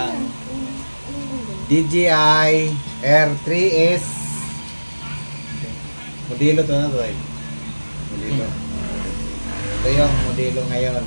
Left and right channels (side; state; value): both; inverted; correlation -1.00